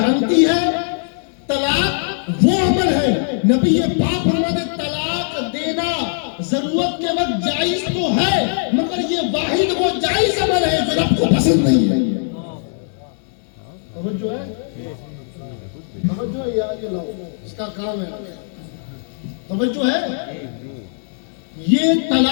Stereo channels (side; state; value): right; silent; digital silence